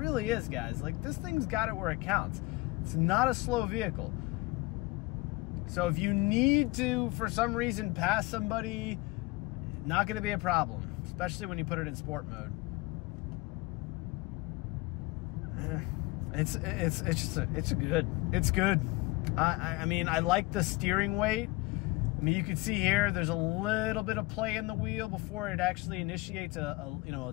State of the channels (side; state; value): right; quieter; 22.5 dB